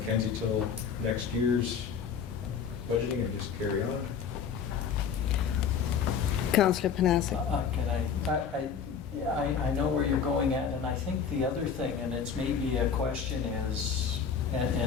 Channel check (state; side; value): quieter; right; 6.8 dB